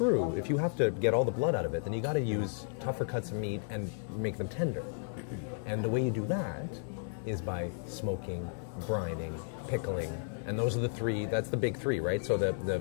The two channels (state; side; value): silent; right; digital silence